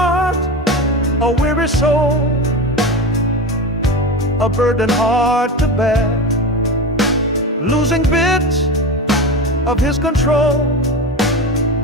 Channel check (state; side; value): normal; both; correlation 0.24